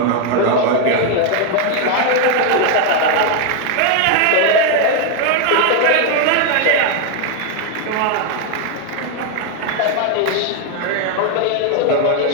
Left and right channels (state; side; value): different; both; correlation 0.00